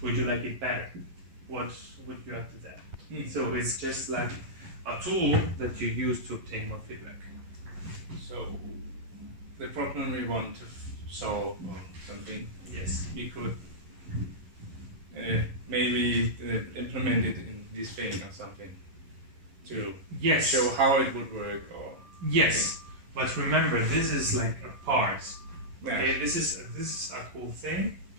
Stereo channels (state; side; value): late; left; 11 ms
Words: Would you like it better? What would you add to that? So it's just like a tool that you use to obtain more feedback. So the problem we want to solve or something, Yes. we could maybe implement it in this thing or something to Yes. show how it would work. Or Yes. But remember, this is like a part. yeah. Okay, this is a cool thing,